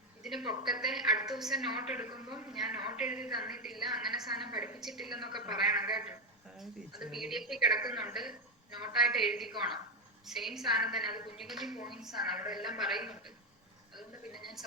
ഇതിന് പൊക്കത്തെ അടുത്ത ദിവസം നോട്ട് എടുക്കുമ്പോൾ ഞാൻ നോട്ട് എഴുതി തന്നിട്ടില്ല, അങ്ങനെ സാധനം പഠിപ്പിച്ചിട്ടില്ല എന്നൊക്കെ പറയണം കേട്ടോ. അത് PDF കിടക്കുന്നുണ്ട്, നോട്ടായിട്ട് എഴുതിക്കോണം. സെയിം സാധനം തന്നെ, അത് കുഞ്ഞു കുഞ്ഞു പോയിന്റ്സ് ആണ്, അവിടെ എല്ലാം പറയുന്നുണ്ട്. അതുകൊണ്ട് പിന്നെ ഞാൻ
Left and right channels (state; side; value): normal; both; correlation 0.09